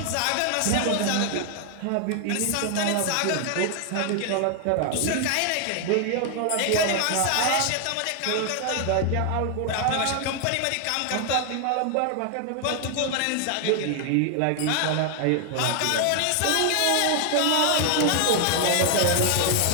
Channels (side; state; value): both; different; correlation 0.00